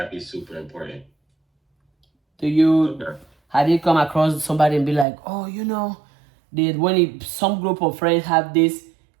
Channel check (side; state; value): left; drops out; at 5.1 s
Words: be super important. Have you come across somebody and be like, oh, you know, some group of friends have this